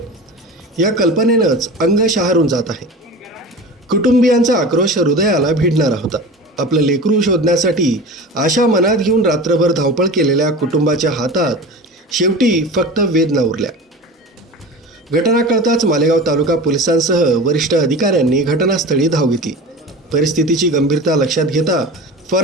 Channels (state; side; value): normal; both; correlation 0.33